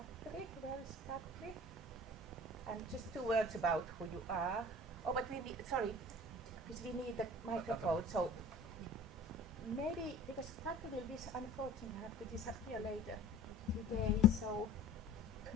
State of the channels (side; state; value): both; normal; correlation 0.44